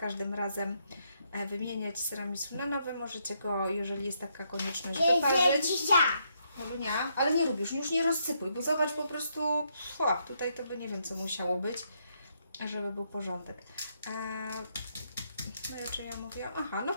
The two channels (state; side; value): inverted; both; correlation -0.76